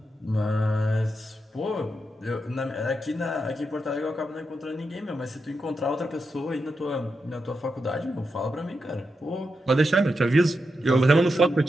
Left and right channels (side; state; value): both; normal; correlation 0.86